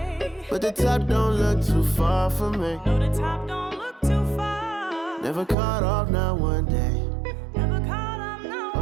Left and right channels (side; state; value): left; drops out; at 5.6 s